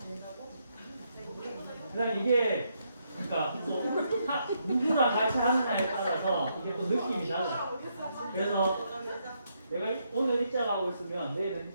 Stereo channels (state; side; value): inverted; both; correlation -0.77